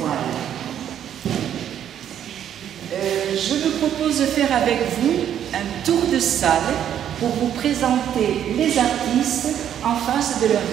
Je vous propose de faire avec vous un tour de salle pour vous présenter les artistes en face de leurs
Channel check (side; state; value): left; quieter; 9.9 dB